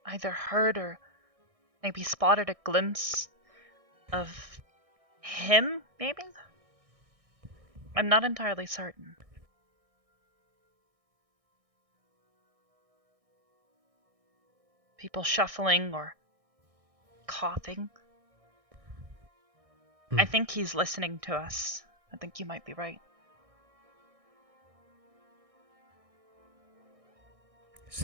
either heard or maybe spotted a glimpse of him, maybe? I'm not entirely certain. People shuffling or coughing. I think he's listening to us. I think you might be right.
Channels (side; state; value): left; late; 1.6 ms